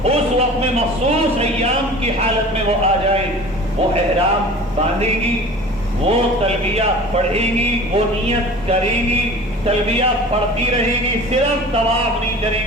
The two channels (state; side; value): normal; both; correlation 0.41